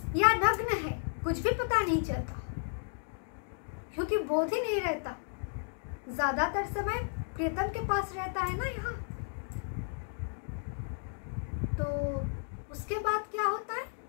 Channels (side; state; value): right; silent; digital silence